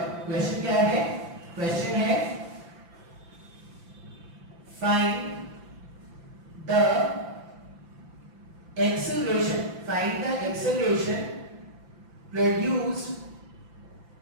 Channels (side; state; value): left; late; 5.9 ms